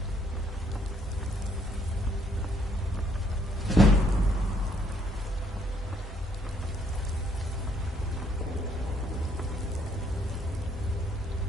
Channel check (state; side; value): normal; both; correlation 0.68